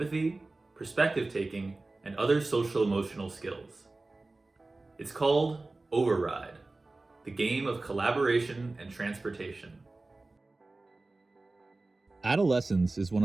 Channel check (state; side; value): quieter; left; 3.2 dB